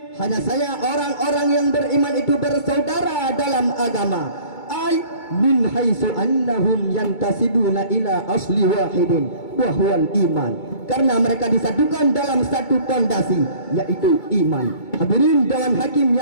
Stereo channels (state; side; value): late; right; 2.2 ms